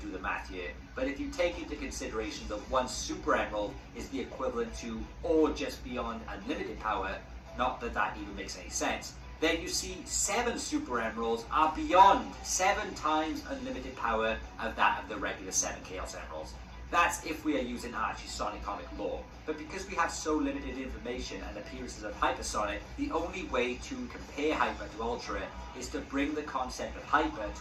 do the math here, but if you take into consideration that 1 Super Emerald is the equivalent to, or just beyond unlimited power, not that that even makes any sense, then you see 7 Super Emeralds are beyond 7 times unlimited power of that of the regular 7 Chaos Emeralds. That's if we are using Archie Sonic comic lore. But because we have so limited information and appearances of Hypersonic, the only way to compare Hyper to Ultra is to bring the concept of Hyper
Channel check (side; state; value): both; identical; correlation 1.00